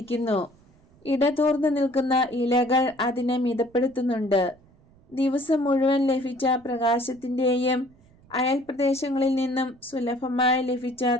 ഇടതൂർന്നു നിൽക്കുന്ന ഇലകൾ അതിനെ മിതപ്പെടുത്തുന്നുണ്ട്. ദിവസം മുഴുവൻ ലഭിച്ച പ്രകാശത്തിന്റെയും അയൽപ്രദേശങ്ങളിൽ നിന്നും സുലഭമായി ലഭിച്ച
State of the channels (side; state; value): right; noise; rumble, 29 dB below the sound